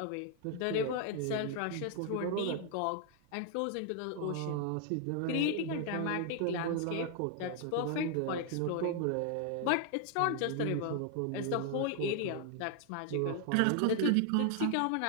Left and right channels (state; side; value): different; both; correlation 0.00